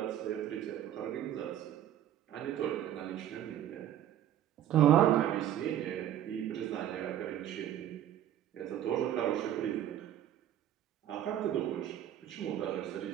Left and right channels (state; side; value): quieter; left; 11.3 dB